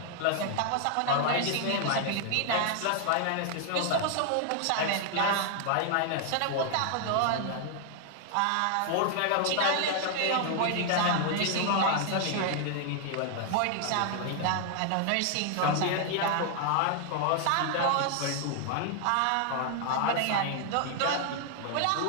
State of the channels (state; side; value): different; both; correlation 0.00